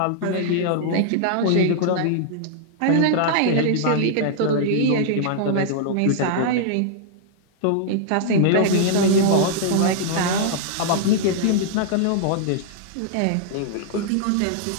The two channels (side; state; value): both; different; correlation -0.01